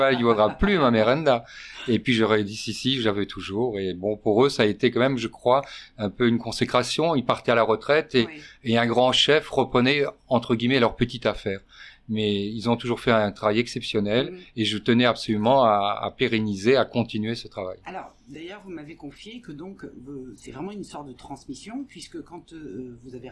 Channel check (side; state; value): both; identical; correlation 1.00